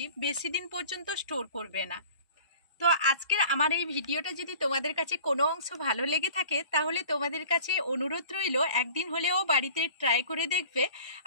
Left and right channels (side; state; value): both; inverted; correlation -0.46